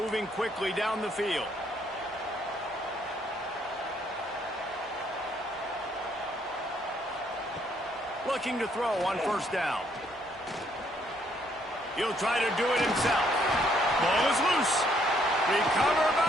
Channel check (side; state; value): both; normal; correlation 0.69